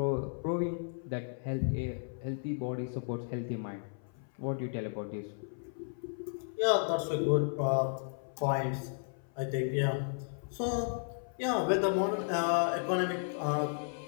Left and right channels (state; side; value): silent; right; 55 dB below the other